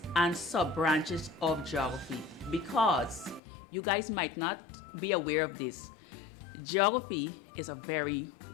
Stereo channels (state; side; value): drops out; right; at 3.4 s